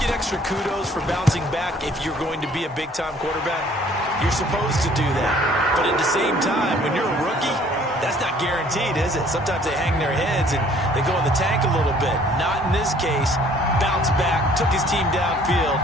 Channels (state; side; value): normal; both; correlation 0.57